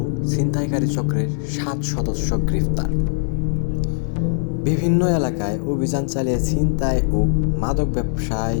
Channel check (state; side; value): silent; right; digital silence